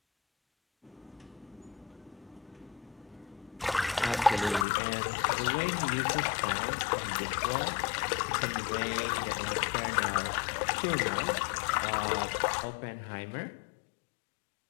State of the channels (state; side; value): drops out; right; at 4.7 s